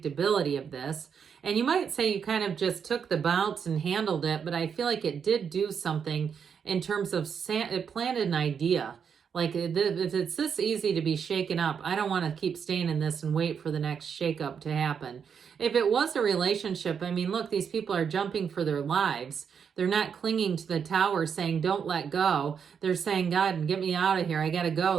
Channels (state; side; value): quieter; left; 7.0 dB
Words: of this. And you might say you kind of just took the bounce and handled it, but I feel like it did do something in terms of, it planted an idea. Like, if it's this easy to be shaken up, I don't want to keep staying in this and wait for the next shakeup to happen. If it was a relationship, I mean, look, these people are jumping for their lives. They're not clinging to the Tower saying, don't let go. They're saying, God, get me out of here. I got to go.